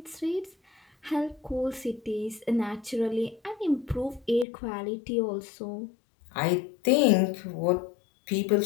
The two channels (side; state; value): right; drops out; at 4.5 s